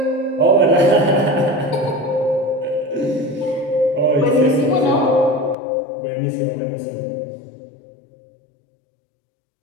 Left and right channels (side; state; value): right; drops out; at 5.6 s